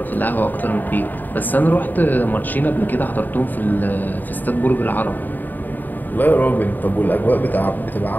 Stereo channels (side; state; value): right; late; 0.088 ms